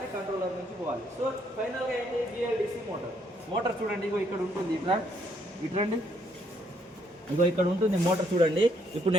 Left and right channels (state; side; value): normal; both; correlation 0.70